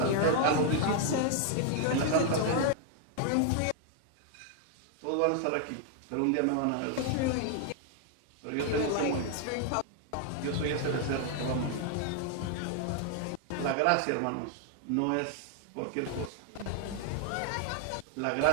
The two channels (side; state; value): both; different; correlation 0.00